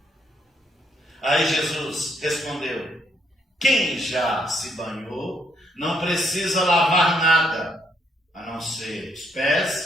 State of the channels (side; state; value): both; normal; correlation 0.72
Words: Aí Jesus respondeu: quem já se banhou não precisa lavar nada, a não ser os